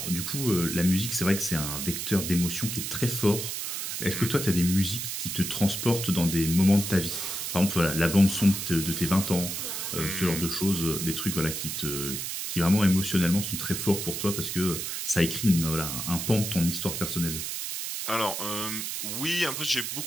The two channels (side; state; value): right; noise; hiss, 4 dB below the sound